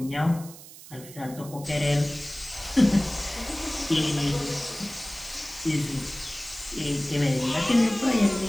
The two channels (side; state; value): right; noise; hiss, 17 dB below the sound